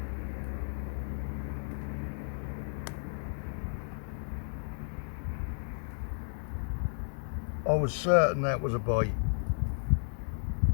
I was certain that was a bite.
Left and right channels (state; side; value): silent; right; digital silence